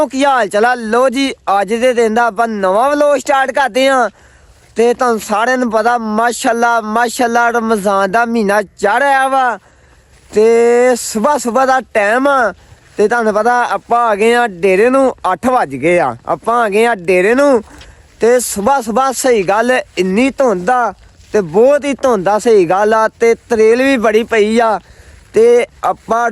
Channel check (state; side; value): identical; both; correlation 1.00